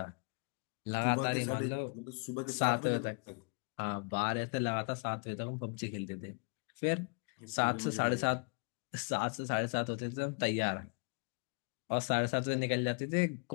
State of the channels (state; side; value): quieter; right; 35.3 dB